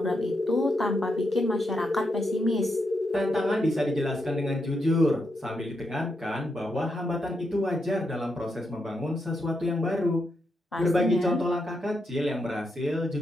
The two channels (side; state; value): both; normal; correlation 0.82